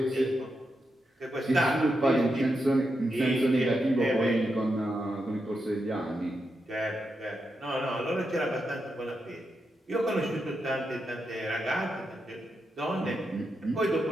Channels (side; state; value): both; normal; correlation 0.86